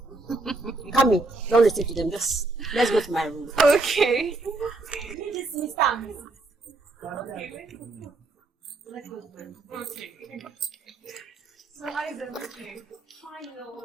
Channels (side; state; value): left; quieter; 3.2 dB